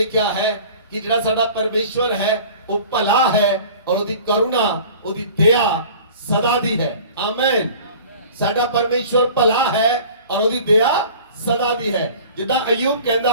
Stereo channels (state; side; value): inverted; both; correlation -0.44